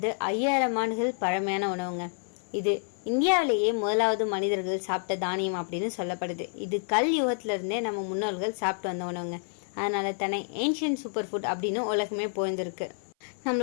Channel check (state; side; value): silent; right; 56 dB below the other